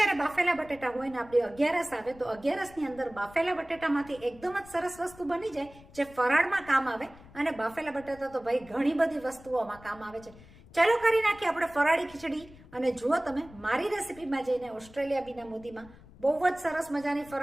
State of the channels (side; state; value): left; noise; rumble, 22 dB below the sound